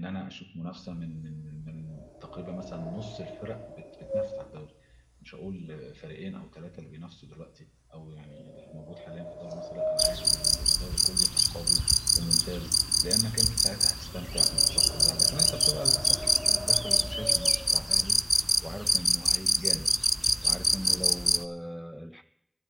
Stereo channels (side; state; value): both; identical; correlation 1.00